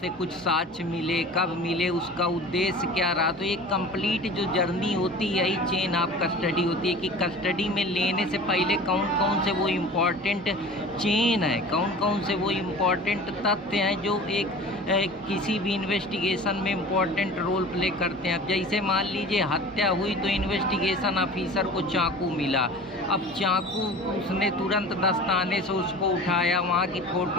कुछ साक्ष्य मिले, कब मिले, उसका उद्देश्य क्या रहा, तो एक कंप्लीट जो जर्नी होती है यही चेन ऑफ कस्टडी होती है कि कस्टडी में लेने से पहले कौन कौन से वो इम्पॉर्टेंट चेन है, कौन कौन से वो इम्पॉर्टेंट तथ्य हैं जो एक किसी भी इन्वेस्टिगेशन में इम्पॉर्टेंट रोल प्ले करते हैं। अब जैसे मान लीजिए हत्या हुई तो इन्वेस्टिगेशन ऑफिसर को चाकू मिला, अब चाकू उसने तुरंत दस्ताने से उसको उठाया, वहाँ की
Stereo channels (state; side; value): normal; both; correlation 0.39